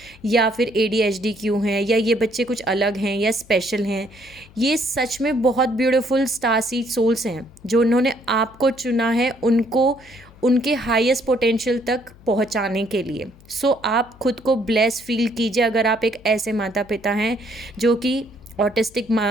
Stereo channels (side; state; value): left; noise; hum, 24 dB below the sound